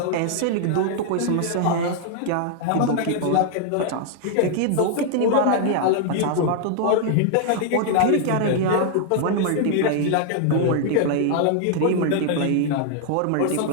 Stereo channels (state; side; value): different; both; correlation 0.00